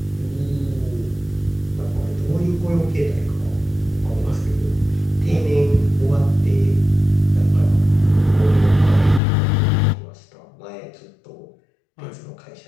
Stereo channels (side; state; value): right; drops out; at 9.2 s